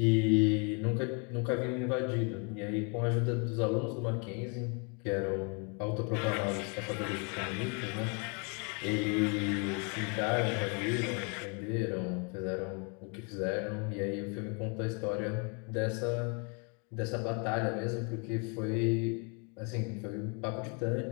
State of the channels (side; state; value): right; quieter; 35.7 dB